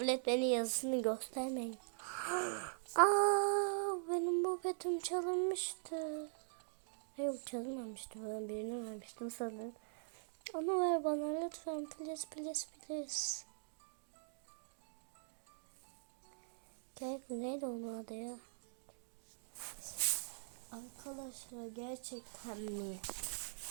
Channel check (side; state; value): left; silent; digital silence